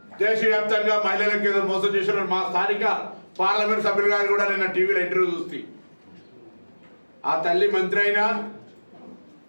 దేశవ్యాప్తంగా మహిళలకు ఏదో మోసం చేసిన మా స్థానిక పార్లమెంట్ సభ్యులు గారు కూడా నిన్న టీవీలో ఇంటర్వ్యూ చూస్తే ఆ తల్లి మంత్రి అయినా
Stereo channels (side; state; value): both; inverted; correlation -1.00